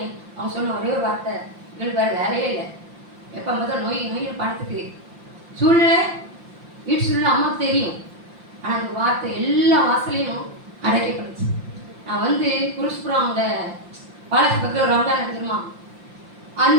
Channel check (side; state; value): left; late; 5.8 ms